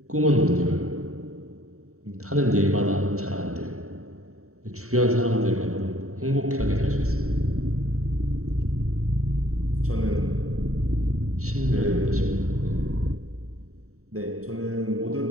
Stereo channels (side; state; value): left; late; 0.64 ms